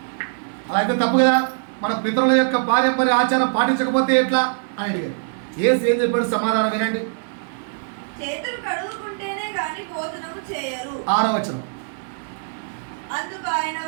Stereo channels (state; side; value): silent; left; 64 dB below the other